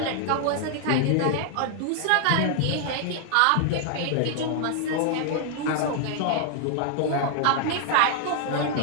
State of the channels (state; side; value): different; both; correlation 0.00